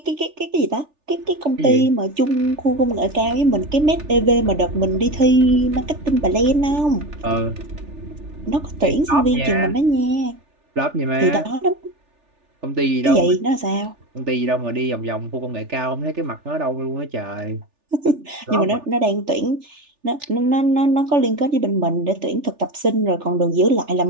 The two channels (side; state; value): left; late; 3.4 ms